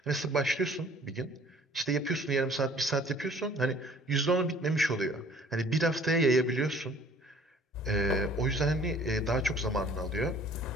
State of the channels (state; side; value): normal; both; correlation 0.54